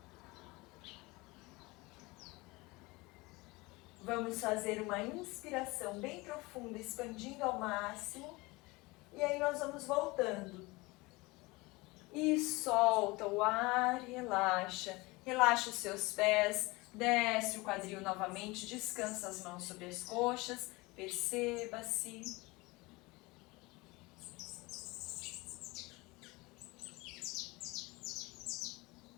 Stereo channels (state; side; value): quieter; right; 23.3 dB